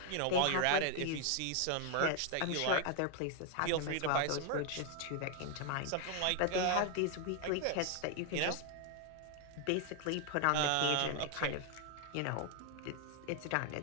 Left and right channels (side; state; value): both; different; correlation 0.00